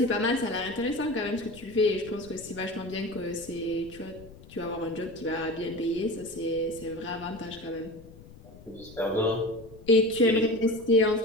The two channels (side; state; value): left; noise; rumble, 20 dB below the sound